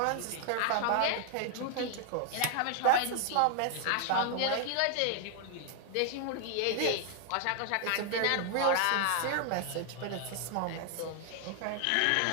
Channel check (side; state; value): both; different; correlation 0.00